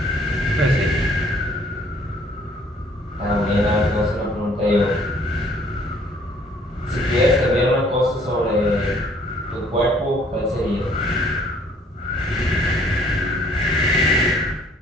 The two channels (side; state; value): both; normal; correlation 0.60